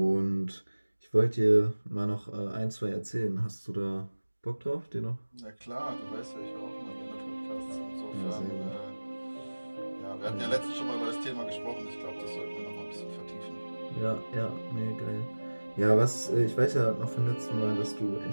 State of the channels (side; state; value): both; inverted; correlation -1.00